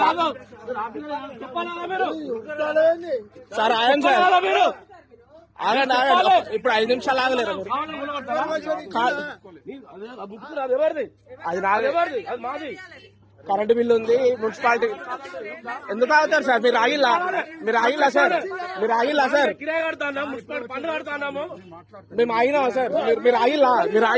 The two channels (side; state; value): both; identical; correlation 1.00